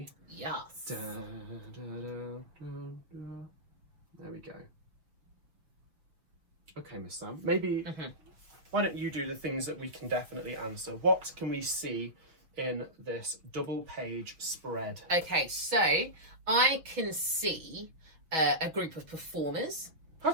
Yes. Da, da, da, da, da. There we go. Okay, Miss Sam, maybe why don't you do the things that we can definitely answer? What can we see in this double page spread? Okay, so I can see a group of performers. How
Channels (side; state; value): left; late; 6.2 ms